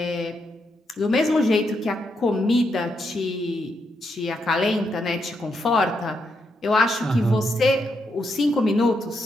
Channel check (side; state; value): both; normal; correlation 0.81